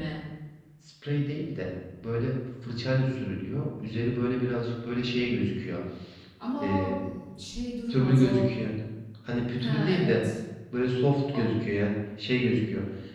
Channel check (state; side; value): identical; both; correlation 1.00